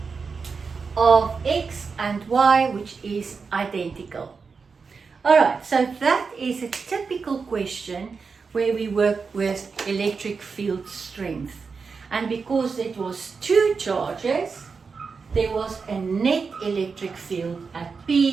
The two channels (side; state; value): left; quieter; 5.1 dB